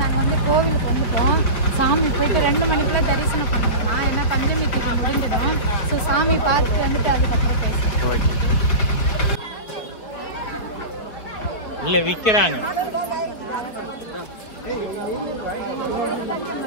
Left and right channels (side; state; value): right; late; 4.8 ms